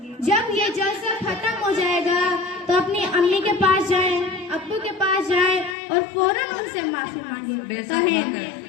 जब ये जलसा खत्म हो जाएगा तो अपनी अम्मी के पास जाएं, अब्बू के पास जाएं और फौरन उनसे माफी मांगे।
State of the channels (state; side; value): drops out; right; at 5.8 s